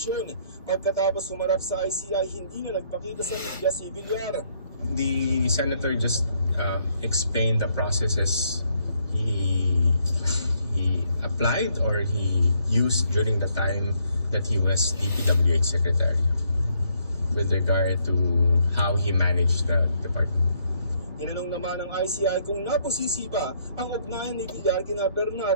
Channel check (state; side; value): inverted; both; correlation -0.71